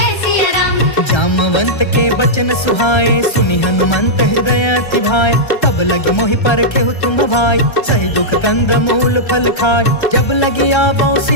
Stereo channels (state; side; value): late; right; 1.3 ms